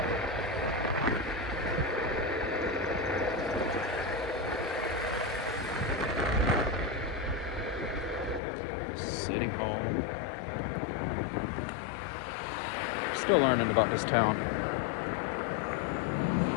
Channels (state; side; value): drops out; right; at 8.4 s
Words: City Hall. Still learning about this town.